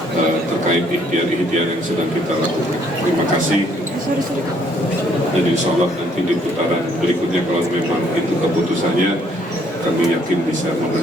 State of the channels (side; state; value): both; normal; correlation 0.65